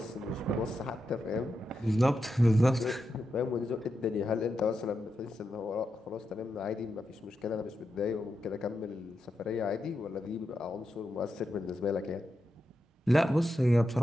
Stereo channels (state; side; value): normal; both; correlation 0.87